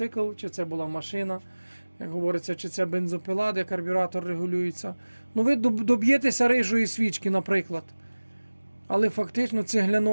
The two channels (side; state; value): both; inverted; correlation -1.00